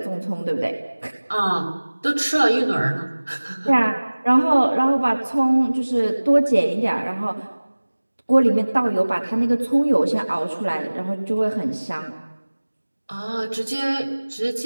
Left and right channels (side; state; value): both; inverted; correlation -1.00